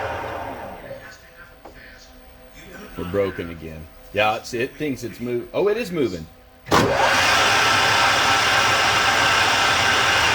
We're broken again. Yeah, it thinks it's moving. Oh, it is moving.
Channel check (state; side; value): identical; both; correlation 1.00